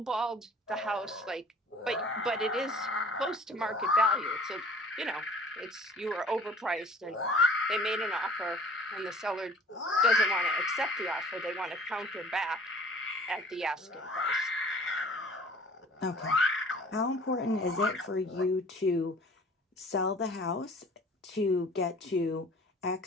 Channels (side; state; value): both; normal; correlation 0.49